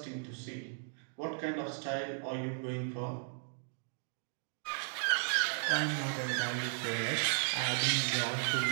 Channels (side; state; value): left; silent; digital silence